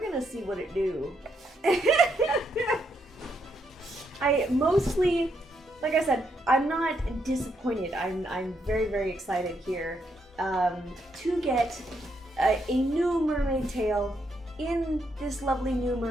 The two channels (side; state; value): both; normal; correlation 0.77